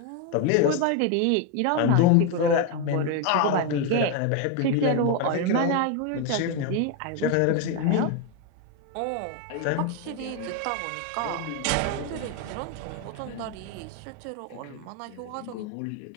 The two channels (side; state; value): both; different; correlation 0.02